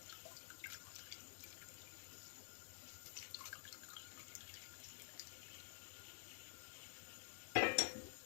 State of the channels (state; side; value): silent; right; digital silence